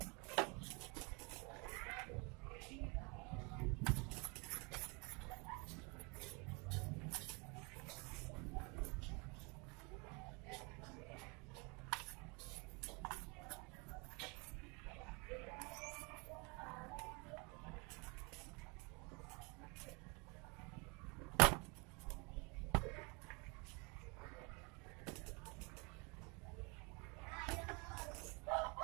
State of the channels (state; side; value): quieter; left; 30.7 dB